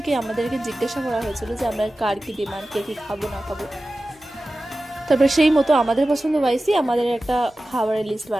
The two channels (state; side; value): normal; both; correlation 0.95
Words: আমাদেরকে জিজ্ঞাসা করা হয়েছিল যে আমরা কার কি ডিমান্ড, কে কি খাবো না খাবো। তারপরে সেই মতো আমাদের পছন্দ ওয়াইজই আমাদের একটা খাবারের লিস্ট